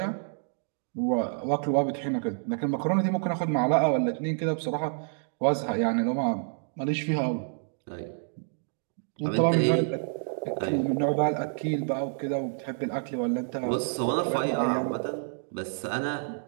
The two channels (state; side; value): silent; left; digital silence